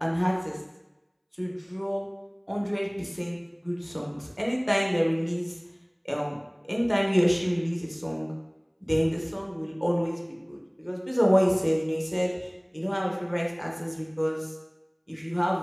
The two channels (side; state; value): both; identical; correlation 1.00